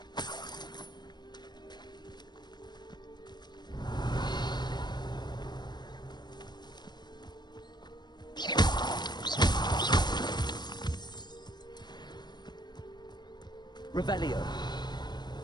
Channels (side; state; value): right; late; 0.21 ms